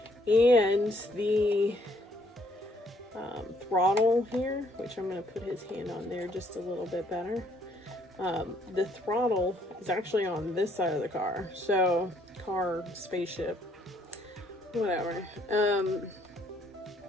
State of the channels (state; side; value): normal; both; correlation 0.67